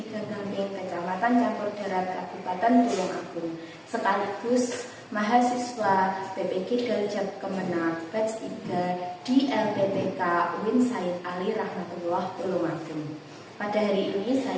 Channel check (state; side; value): identical; both; correlation 1.00